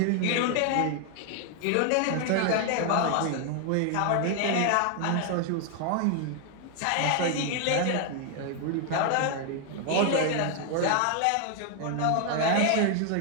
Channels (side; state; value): both; different; correlation 0.00